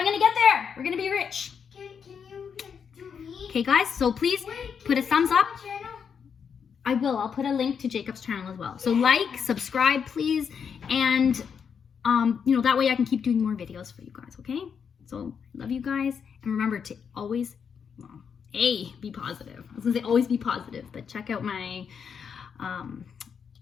going to get there. We're going to be rich. Can you do me? Okay, guys, so please put a thumbs up. I will. I'll put a link to Jacob's channel as well. So like, subscribe, please. And, that way I can keep doing more videos for you guys, okay? So love you guys. And remember to always, be positive. I was going to say always be positive. But check out my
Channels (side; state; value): right; quieter; 6.9 dB